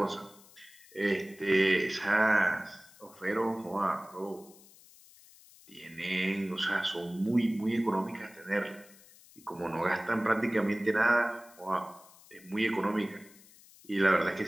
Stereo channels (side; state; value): left; noise; hiss, 24 dB below the sound